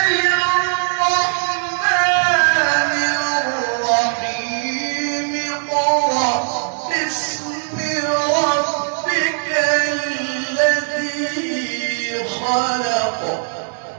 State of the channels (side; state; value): left; silent; 63 dB below the other